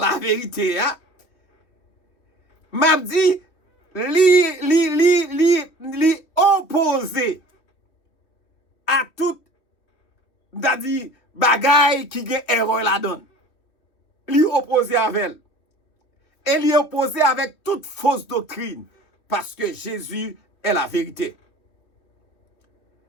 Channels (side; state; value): right; late; 3.2 ms